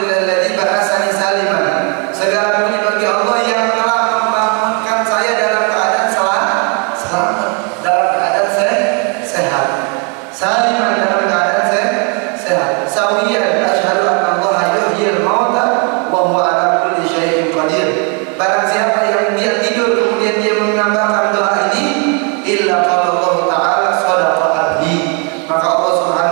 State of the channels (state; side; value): quieter; left; 36.1 dB